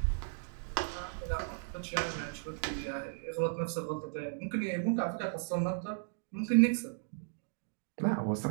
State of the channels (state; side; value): silent; left; digital silence